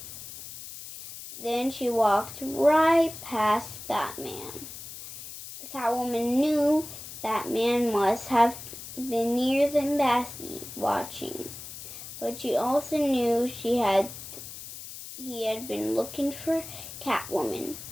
Then she walked right past Batman. Catwoman knew Batman must have been near the embassy watching, but she also knew he had been looking for Catwoman,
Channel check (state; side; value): noise; left; hiss, 12 dB below the sound